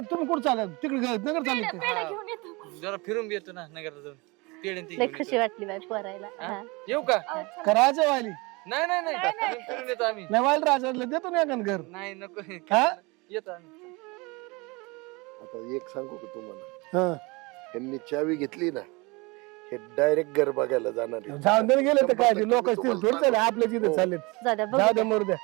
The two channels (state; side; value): quieter; left; 25.9 dB